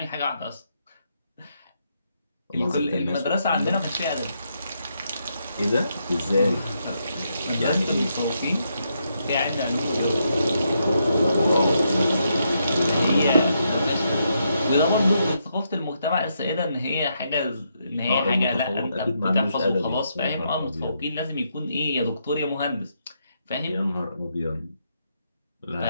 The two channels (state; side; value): inverted; both; correlation -0.79